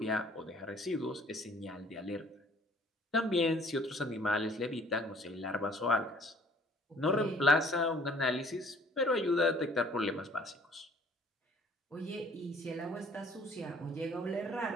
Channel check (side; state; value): both; normal; correlation 0.56